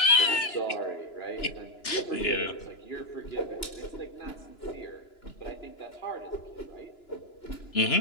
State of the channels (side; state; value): right; late; 2.9 ms